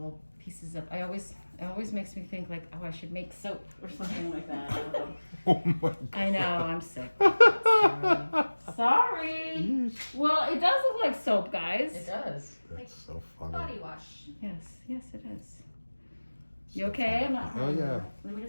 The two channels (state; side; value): inverted; both; correlation -1.00